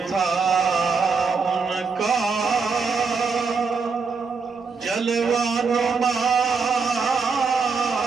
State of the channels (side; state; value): left; quieter; 5.0 dB